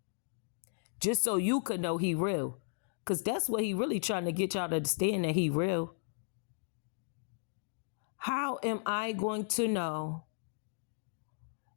Just so you could know he real. Because that's what he really trying to get y'all to understand, that he real. How am I going to know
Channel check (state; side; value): silent; right; digital silence